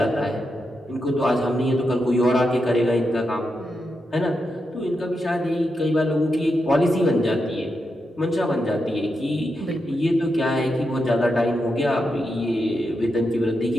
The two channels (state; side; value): normal; both; correlation 0.86